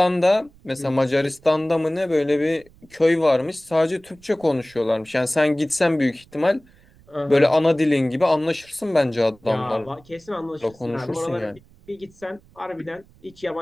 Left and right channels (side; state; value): right; noise; rumble, 28 dB below the sound